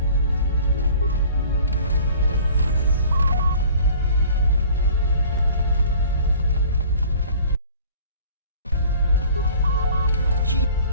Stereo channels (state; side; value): inverted; both; correlation -0.48